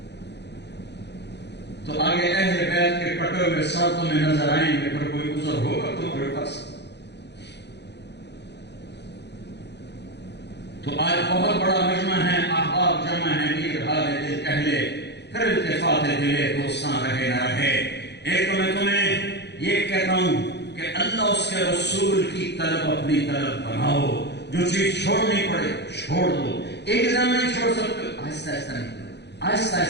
تو آگے اہل بیت کے کٹے ہوئے ساتھوں میں نظر آئیں گے، پھر کوئی عذر ہوگا تمہارے پاس. تو آج بہت بڑا مجمع ہے، احباب جمع ہے، میر حال دل کہلے، پھر التفات دلے دوستاں رہے نہ رہے. ایک تو میں تمہیں یہ کہتا ہوں کہ اللہ اس کے رسول کی طلب اپنی طلب بناؤ. جو چیز چھوڑنی پڑے چھوڑ دو. ایک دم نہیں چھوڑ سکتے، آہستہ آہستہ نکلو، آہستہ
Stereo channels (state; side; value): late; right; 0.50 ms